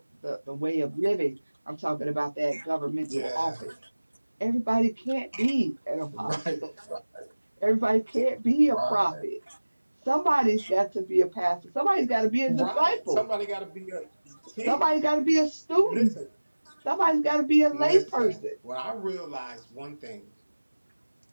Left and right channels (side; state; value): both; inverted; correlation -1.00